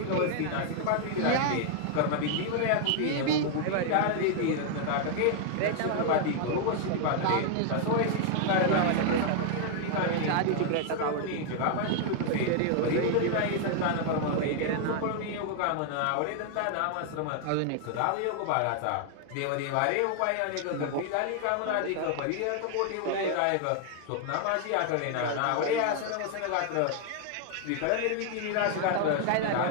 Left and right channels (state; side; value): different; both; correlation 0.00